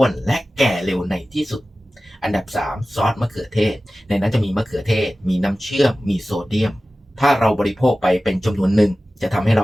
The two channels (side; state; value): both; normal; correlation 0.96